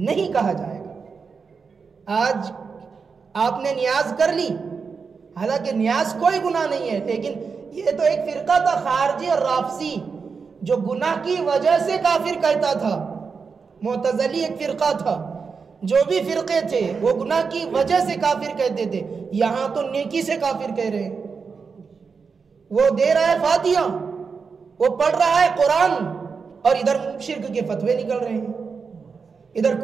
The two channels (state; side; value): quieter; left; 5.3 dB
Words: کہا جائے گا. آج آپ نے نیاز کر لی، حالانکہ نیاز کوئی گناہ نہیں ہے، لیکن یہ تو ایک فرقہ تھا خارجی اور رافضی جو گناہ کی وجہ سے کافر کہتا تھا. معتزلی ایک فرقہ تھا، جو بھی فرقے تھے وہ گناہ کی وجہ سے کافر کہتے تھے. یہاں تو نیکی سے کافر کہہ رہے ہیں. وہ دے رہا ہے فاتحہ، وہ پڑھ رہا ہے قرآن، اور ادھر شرک کے فتوے نکل رہے ہیں، ادھر